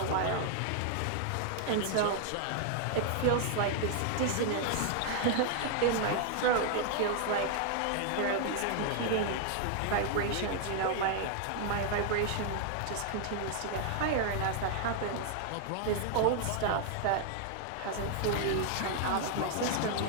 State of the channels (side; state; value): both; different; correlation 0.00